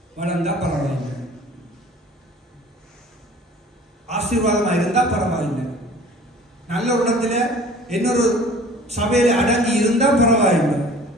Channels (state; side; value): normal; both; correlation 0.47